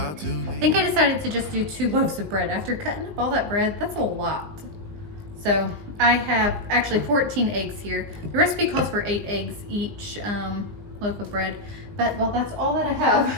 I think I decided to just do 2 loaves of bread. After cutting up all that bread, that's a lot. So I have actually 14 eggs here. The recipe calls for 8 eggs each loaf of bread, but well, that's all that I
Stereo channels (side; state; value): left; late; 19 ms